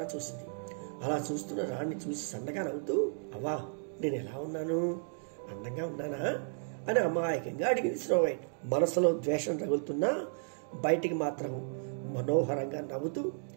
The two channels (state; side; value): silent; left; digital silence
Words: చూసింది. అలా చూస్తున్న రాణిని చూసి సన్నగా నవ్వుతూ, అవ్వా, నేను ఎలా ఉన్నాను? అందంగా ఉన్నానా అని అమాయకంగా అడిగింది స్నోవైట్. మనసులో ద్వేషం రగులుతున్నా బయటికి మాత్రం మనోహరంగా నవ్వుతూ,